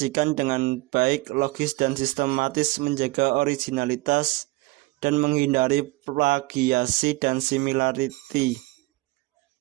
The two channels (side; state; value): left; quieter; 22.7 dB